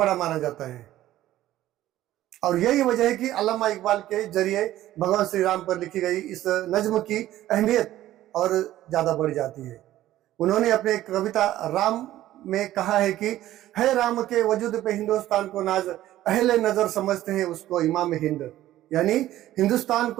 माना जाता है, और यही वजह है कि अल्लामा इकबाल के जरिए भगवान श्री राम पर लिखी गई इस नज्म की अहमियत और ज्यादा बढ़ जाती है। उन्होंने अपने कविता राम में कहा है कि है राम के वजूद पे हिंदुस्तान को नाज अहले नजर समझते हैं उसको इमाम हिंद, यानी हिंदुस्तान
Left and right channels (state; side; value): quieter; left; 14.1 dB